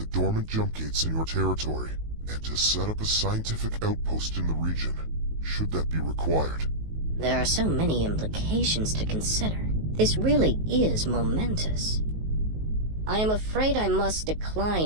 dormant jump gates in your territory, and to set up a scientific outpost in the region, should that be required. There are so many implications to consider. This really is momentous. I am afraid I must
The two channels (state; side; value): late; left; 19 ms